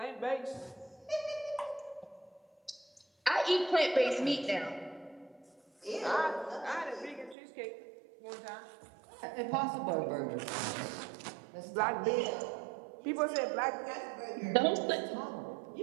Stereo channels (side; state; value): left; drops out; at 7.4 s